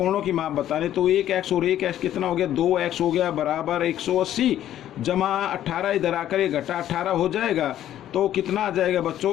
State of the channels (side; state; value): right; quieter; 11.9 dB